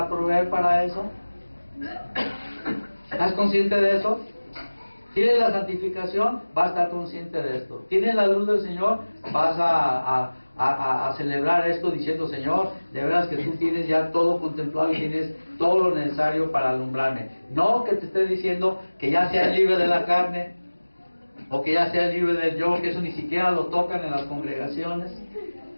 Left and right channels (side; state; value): both; inverted; correlation -1.00